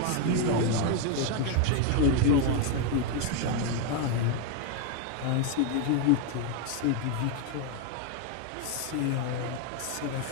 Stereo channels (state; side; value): different; both; correlation 0.01